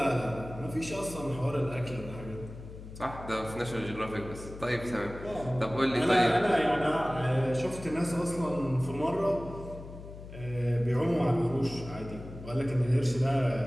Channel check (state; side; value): noise; left; hum, 13 dB below the sound